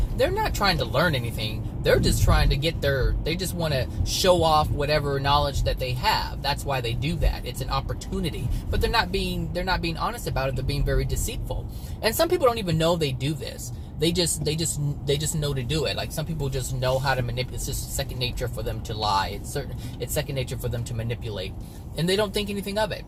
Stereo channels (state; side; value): identical; both; correlation 1.00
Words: they're not trying to learn anything. They're just trying to they just want to show off whatever knowledge that they have. That's why they do that. It's an opportunity. But they're not being honest about it. They're being very deceitful. And some people don't even know they do this. They just know to do it. Like some people just know how to manipulate. It's just second nature for them to lie. It's second nature for them to manipulate, and they don't think anything of it.